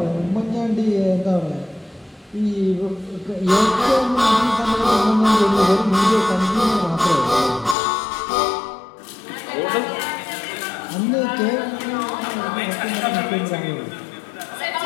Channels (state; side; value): drops out; right; at 7.8 s